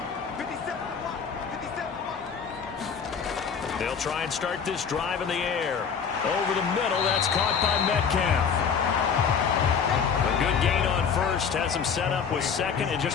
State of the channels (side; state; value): right; quieter; 6.5 dB